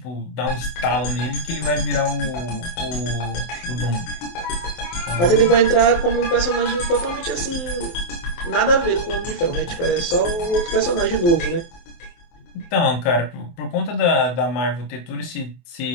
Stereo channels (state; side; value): late; right; 23 ms